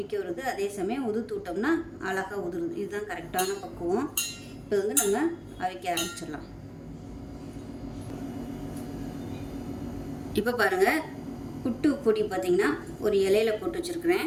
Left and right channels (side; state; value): both; identical; correlation 1.00